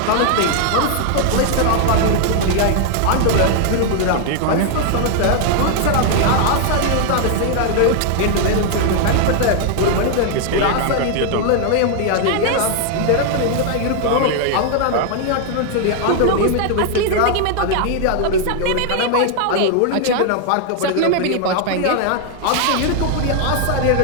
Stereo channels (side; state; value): both; different; correlation 0.00